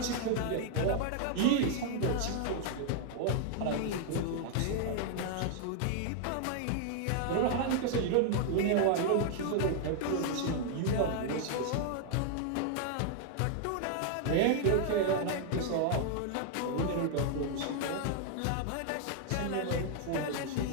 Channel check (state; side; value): different; both; correlation 0.00